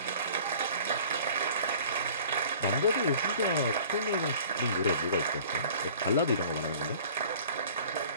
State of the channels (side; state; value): both; inverted; correlation -0.48